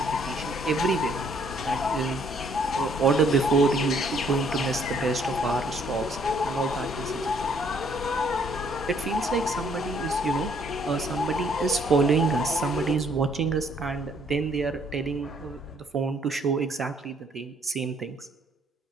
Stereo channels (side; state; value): both; normal; correlation 0.65